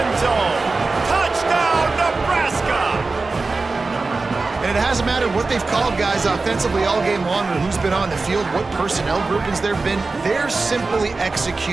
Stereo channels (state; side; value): quieter; left; 3.8 dB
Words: zone. Touchdown, Nebraska! And it hasn't mattered what they've called guys offensively all game long or who's been on the field, what personnel groupings there have been. They're simply